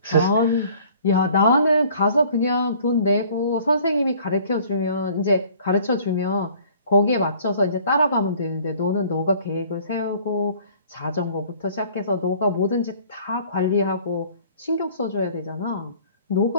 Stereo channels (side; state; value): both; inverted; correlation -0.53